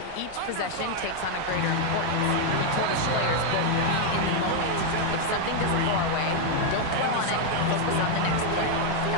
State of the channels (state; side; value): different; both; correlation 0.00